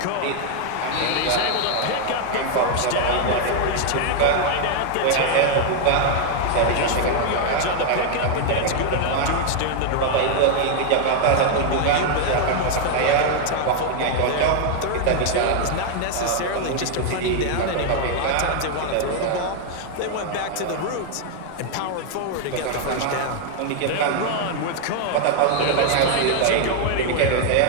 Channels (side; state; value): both; different; correlation 0.00